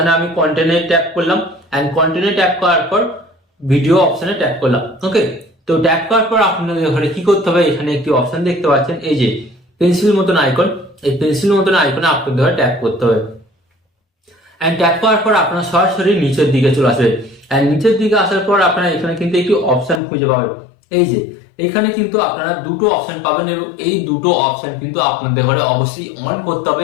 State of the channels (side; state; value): right; drops out; at 20.0 s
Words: আমি কন্টেন্টে ট্যাপ করলাম, এন্ড কন্টেন্টে ট্যাপ করার পর ভিডিও অপশনে ট্যাপ করলাম। ওকে, তো ট্যাপ করার পর আপনাদের ঘরে কি করতে হবে, এখানে একটি অপশন দেখতে পাচ্ছেন, এই যে পেন্সিল মতন আইকন, এই পেন্সিল মতন আইকনে আপনাদের ঘরে ট্যাপ করতে হবে। এন্ড ট্যাপ করার পর আপনারা সরাসরি নিচের দিকে চলে আসবে। এন্ড নিচের দিকে আসার পর আপনারা এখানে কিন্তু একটি অপশন খুঁজে পাবেন, এই যে এখানে কিন্তু আপনারা দুটো অপশন পাবেন, এবং এই দুটো অপশন কিন্তু আপনাদের ঘরে অবশ্যই অন করতে হবে।